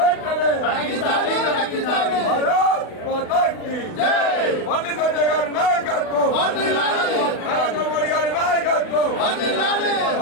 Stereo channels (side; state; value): right; late; 40 ms